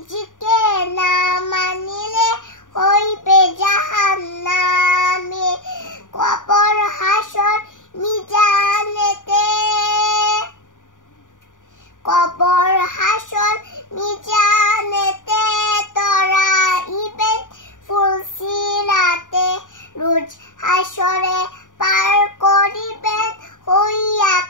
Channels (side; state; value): right; late; 0.87 ms